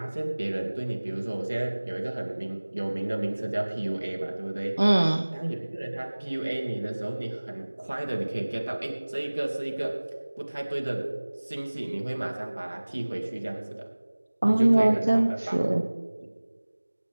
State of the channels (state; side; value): inverted; both; correlation -1.00